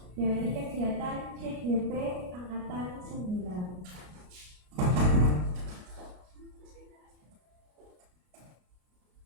dari kegiatan CGP Angkatan 9.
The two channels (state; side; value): late; left; 33 ms